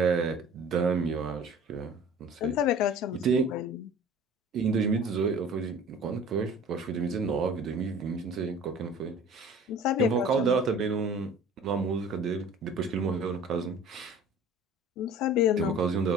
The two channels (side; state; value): both; normal; correlation 0.45